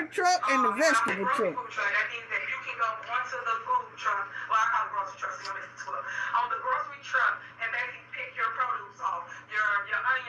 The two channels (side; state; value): both; identical; correlation 1.00